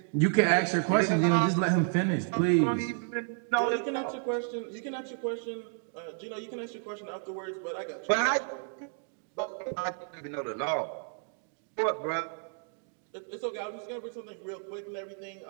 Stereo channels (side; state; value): left; silent; 56 dB below the other